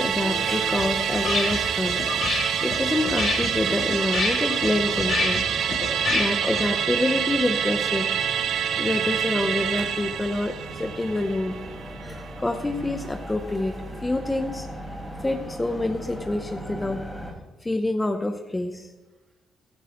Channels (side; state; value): both; normal; correlation 0.79